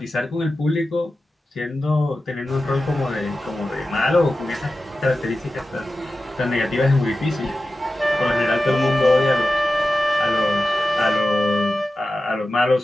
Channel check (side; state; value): both; normal; correlation 0.93